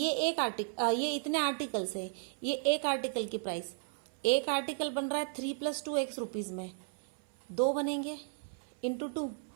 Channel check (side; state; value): left; silent; 55 dB below the other